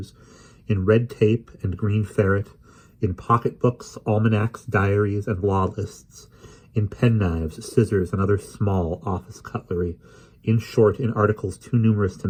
in red tape and green ferret, in pocketbooks, almanacs, diaries, and law lists, in penknives, scissors, and other small office cutlery, in short, in articles too numerous to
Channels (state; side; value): identical; both; correlation 1.00